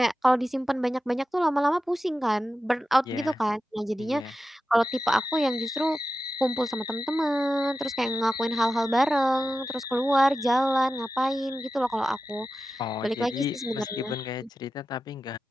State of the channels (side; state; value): both; normal; correlation 0.92